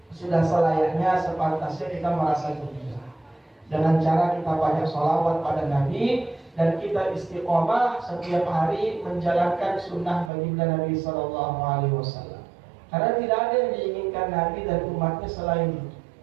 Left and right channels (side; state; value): left; drops out; at 10.3 s